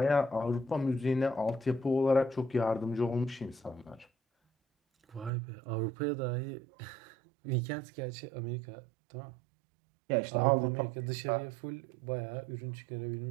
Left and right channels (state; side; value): drops out; left; at 5.3 s